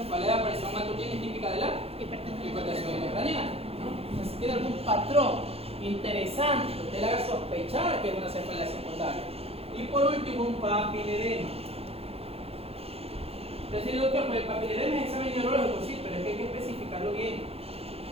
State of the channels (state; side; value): late; left; 0.29 ms